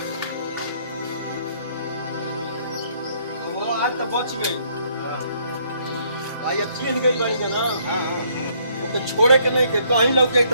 वो आज तो बच गई भाई अब चीन गई बड़ी का ना ओके छोड़े के नहीं के कहीं लग जाए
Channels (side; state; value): both; inverted; correlation -0.67